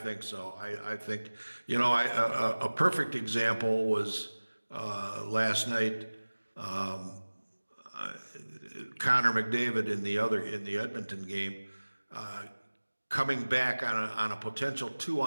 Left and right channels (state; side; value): inverted; both; correlation -1.00